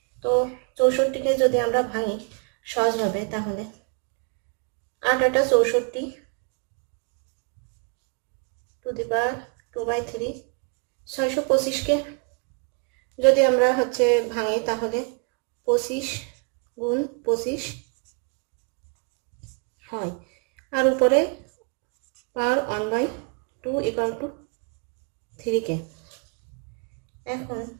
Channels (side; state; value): left; quieter; 34.1 dB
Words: তো 64কে যদি আমরা ভাঙি সহজভাবে, তাহলে 8 8 64 টু দি পাওয়ার 2/3। 625কে যদি আমরা ভাঙি তাহলে 25 গুণ 25 হয়, আর উপরে পাওয়ার 1/2 ইকুয়াল টু 3k। এখন